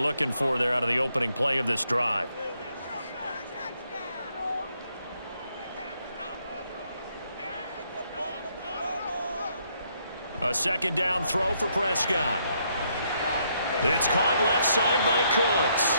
for there out of the opening play of this drive. A 2nd down throw for Prescott. It's caught left side by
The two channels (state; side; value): inverted; both; correlation -0.73